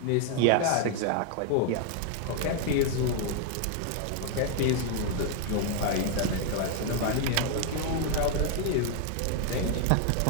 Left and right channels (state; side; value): different; both; correlation 0.00